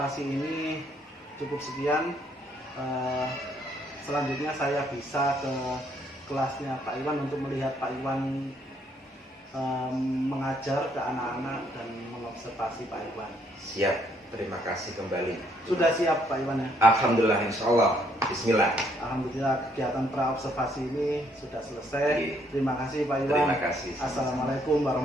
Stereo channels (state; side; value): normal; both; correlation 0.69